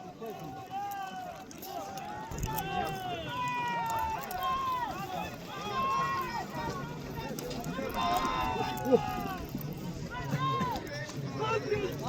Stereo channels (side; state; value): both; identical; correlation 1.00